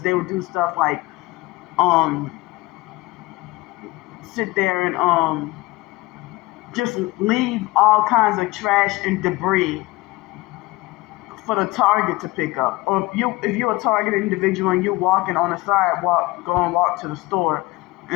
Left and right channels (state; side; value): quieter; right; 20.9 dB